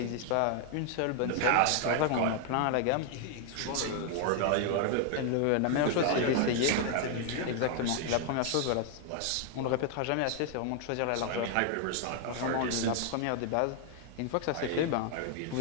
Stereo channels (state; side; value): different; both; correlation 0.00